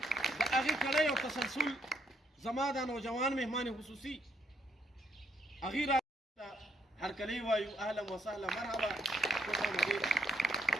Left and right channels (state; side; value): normal; both; correlation 0.72